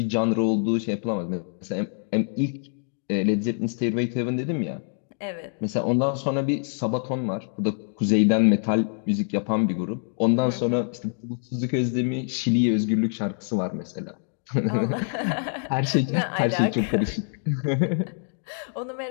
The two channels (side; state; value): right; silent; 61 dB below the other